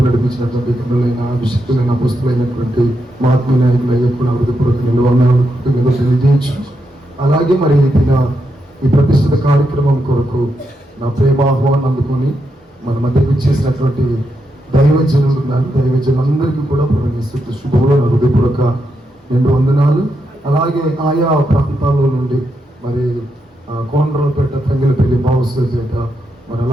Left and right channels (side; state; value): both; normal; correlation 0.83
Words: నడిపించినటువంటి గనులైన, అభిషక్తులైన, పుస్తులైనటువంటి మహాత్మ నాయకులయ్యే కూడా హృదయపూర్వక నిలవనాలు తెలియజేయచ్చు. అలాగే మరి ఈ ప్రతిష్ఠిత కార్యక్రమం కొరకు నా ప్రేమ ఆహ్వానం అందుకొని మన మధ్యకు ఇచ్చేసినటువంటి దైవజనులందరికీ కూడా ప్రవేశిస్తూ శుభంలో నా హృదయపూర్వక 2 వందనాలు. అలాగే ఆయా ప్రాంతాల్లో నుండి మరి కోనరావుపేట, తంగెలపల్లి, బావుసపేట, మరి